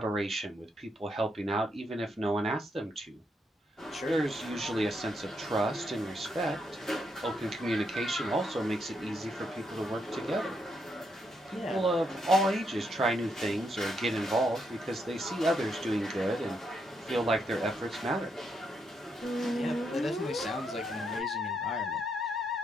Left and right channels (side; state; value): both; normal; correlation 0.78